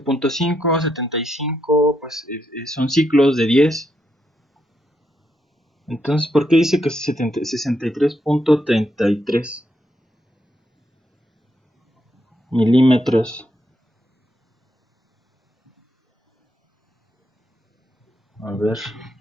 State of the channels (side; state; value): both; normal; correlation 0.80